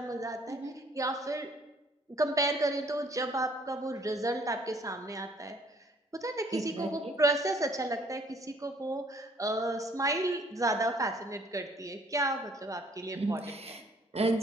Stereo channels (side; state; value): both; normal; correlation 0.60